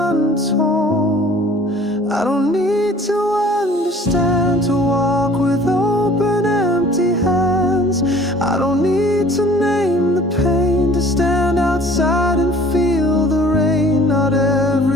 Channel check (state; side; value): normal; both; correlation 0.51